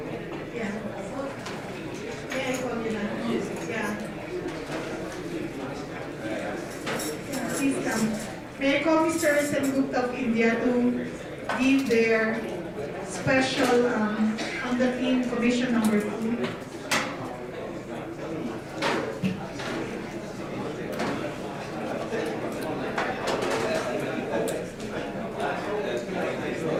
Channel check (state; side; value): identical; both; correlation 1.00